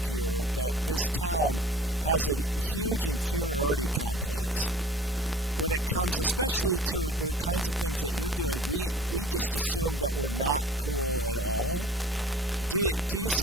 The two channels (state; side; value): normal; both; correlation 0.47